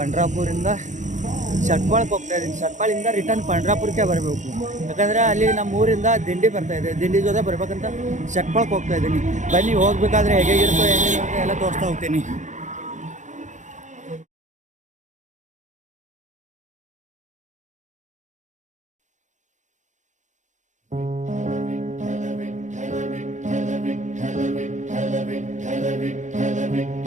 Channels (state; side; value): late; left; 0.35 ms